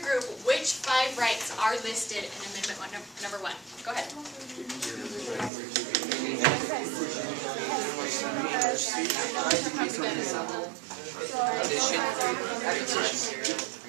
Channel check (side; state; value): left; drops out; at 5.5 s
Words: which 5 rights are listed in Amendment number 1. Go ahead.